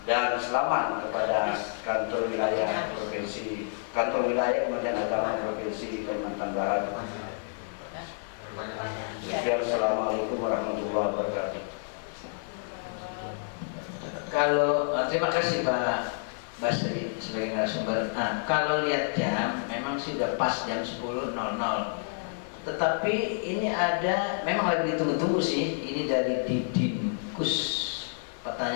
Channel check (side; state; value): right; silent; digital silence